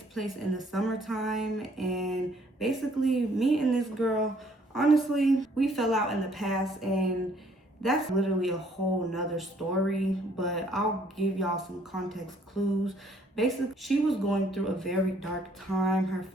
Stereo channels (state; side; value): normal; both; correlation 0.63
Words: place in the summertime, and basically me and this girl, honestly, we fell out in the past, and that's literally a whole nother story, but I'll give y'all some context clues. Basically, she was going through a very dark time. Her